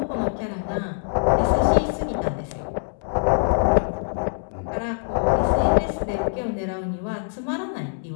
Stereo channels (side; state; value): right; silent; 63 dB below the other